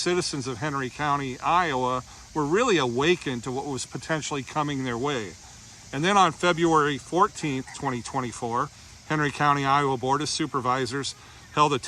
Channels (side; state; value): both; identical; correlation 1.00